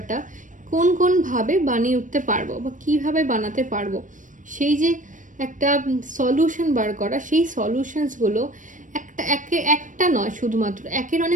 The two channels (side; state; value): left; late; 0.37 ms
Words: কোনভাবে বানিয়ে উঠতে পারবো বা কিভাবে বানাতে পারবো, সেই যে একটা সলিউশন বার করা, সেই সলিউশনসগুলো একটা নয়, শুধুমাত্র একের